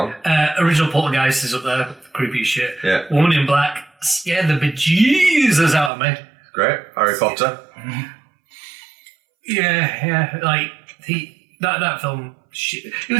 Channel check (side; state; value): left; drops out; at 5.9 s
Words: Original Poltergeist is up there, creepy as shit. Yeah. Woman in Black scared the bejesus out of me. Great. Harry Potter. Yeah, like that film. Shit. It